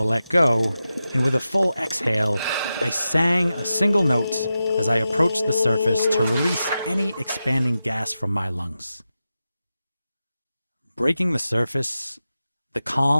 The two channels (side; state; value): both; inverted; correlation -0.91